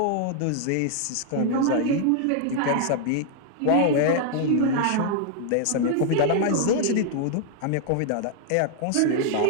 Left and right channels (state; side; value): different; both; correlation 0.00